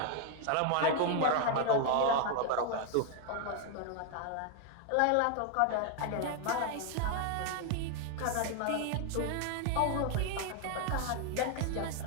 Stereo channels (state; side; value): different; both; correlation 0.00